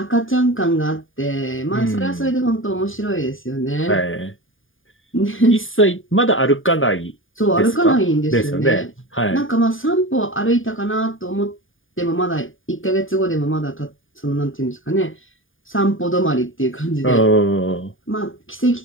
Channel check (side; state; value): right; late; 0.58 ms